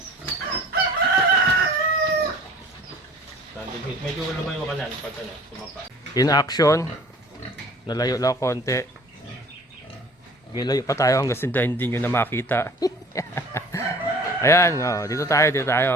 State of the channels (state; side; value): normal; both; correlation 0.48